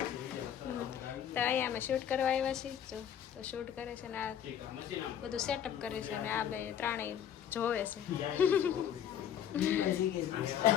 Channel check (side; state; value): right; quieter; 9.5 dB